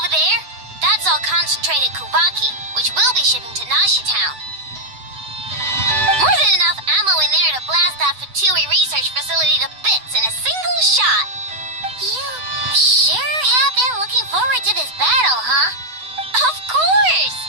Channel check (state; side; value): late; left; 8.0 ms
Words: there? That's all concentrated Kuvaki, which we'll be shipping to Nashi Town.